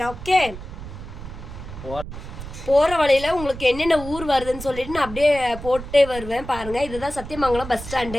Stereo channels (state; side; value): noise; right; rumble, 11 dB below the sound